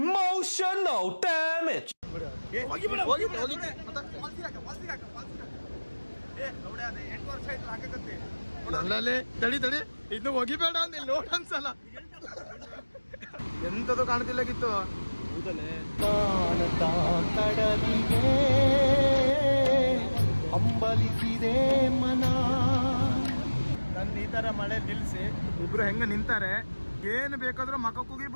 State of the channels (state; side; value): inverted; both; correlation -1.00